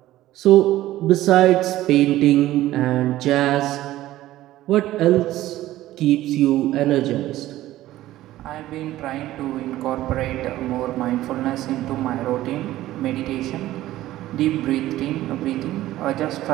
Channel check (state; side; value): quieter; left; 15.1 dB